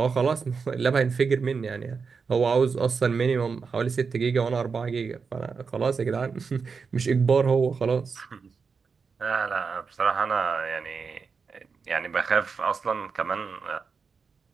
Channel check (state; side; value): quieter; left; 5.3 dB